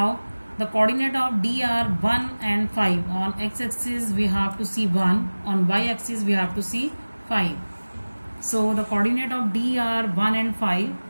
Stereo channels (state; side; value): inverted; both; correlation -1.00